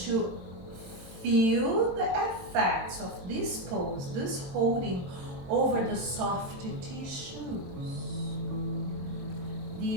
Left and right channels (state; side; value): late; left; 22 ms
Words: feel the effects of this pose, this holding over the soft tissues.